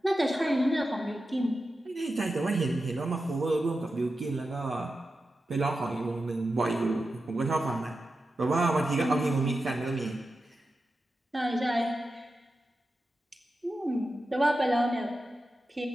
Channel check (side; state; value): both; normal; correlation 0.91